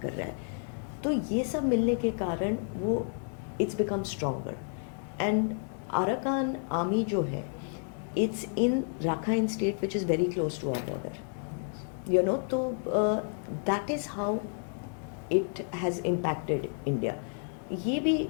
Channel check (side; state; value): right; silent; 57 dB below the other